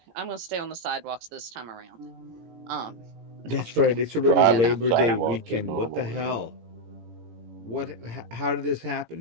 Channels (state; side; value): late; left; 18 ms